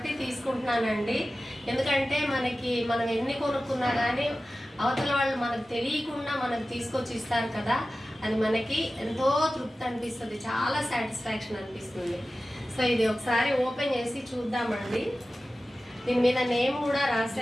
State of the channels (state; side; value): normal; both; correlation 0.95